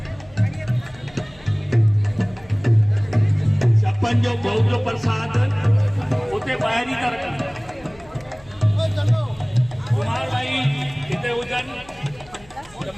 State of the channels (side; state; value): left; noise; hum, 26 dB below the sound